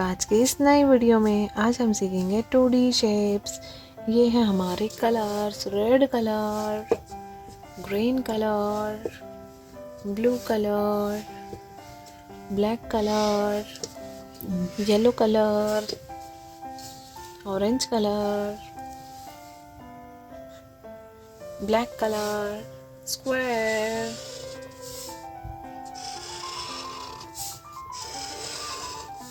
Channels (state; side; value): identical; both; correlation 1.00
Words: आज की इस नई वीडियो में। आज हम सीखेंगे 2D शेप्स। ये हैं हमारे colours, red colour, green colour, blue colour, black colour, yellow colour, orange colour, black colour, square,